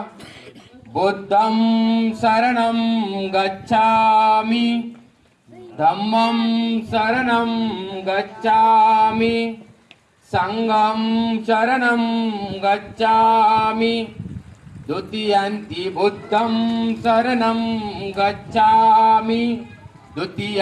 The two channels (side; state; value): both; identical; correlation 1.00